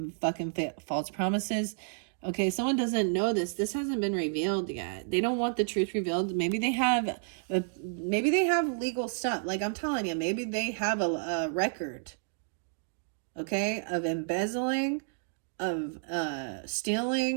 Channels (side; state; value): left; silent; digital silence